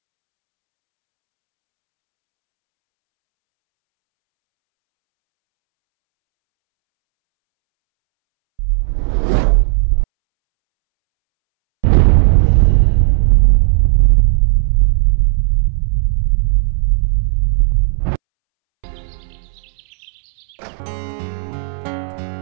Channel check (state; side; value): silent; left; 67 dB below the other